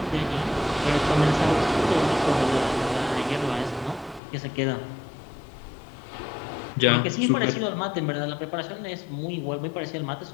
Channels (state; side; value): drops out; right; at 4.2 s